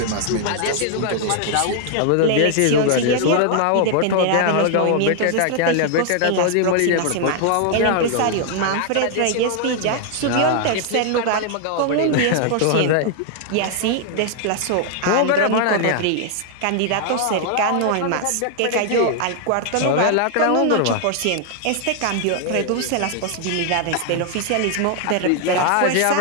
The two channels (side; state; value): both; different; correlation 0.00